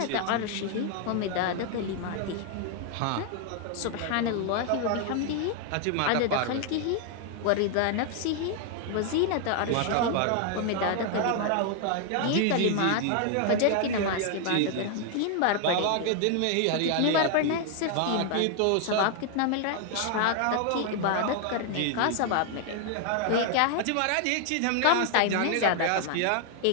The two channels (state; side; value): different; both; correlation 0.00